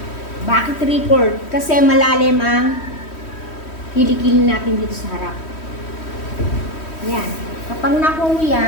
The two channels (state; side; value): late; right; 3.1 ms